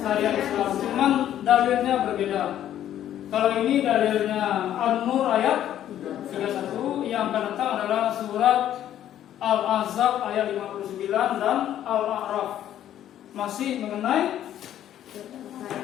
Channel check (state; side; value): quieter; right; 11.4 dB